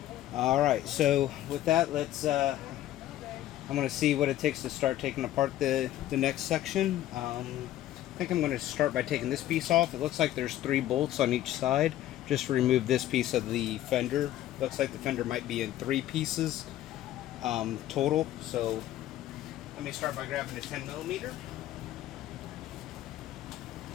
Alright, so with that, I'm going to see what it takes to start taking apart the next section. I think I'm going to start by taking this piece off. It looks like there's 3 bolts on each side. Just to remove this piece of the fender. Looks like the fender might be in 3 pieces total. So let me start by grabbing a 10mm.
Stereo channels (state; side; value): quieter; right; 13.4 dB